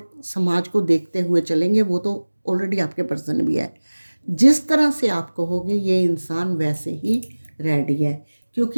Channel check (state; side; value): inverted; both; correlation -1.00